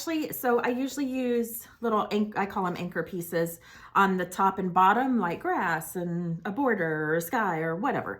usually use little, I call them anchor pieces on the top and bottom, like grass and a border or a sky or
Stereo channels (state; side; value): identical; both; correlation 1.00